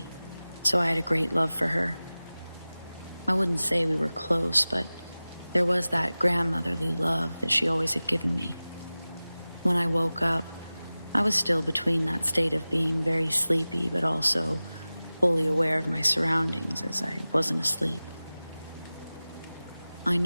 so I had a great love for her. I wouldn't say we were close, but there was that grandmotherly love that she always had given me. When I woke up, I was still between that state of being very sleepy, but also fully aware of my surroundings as I wasn't asleep. I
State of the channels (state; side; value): inverted; both; correlation -0.97